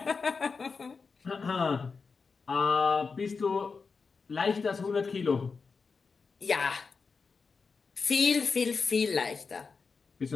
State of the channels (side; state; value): right; quieter; 4.9 dB